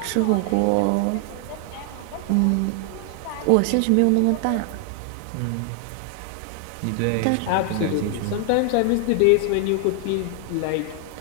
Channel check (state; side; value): different; both; correlation 0.00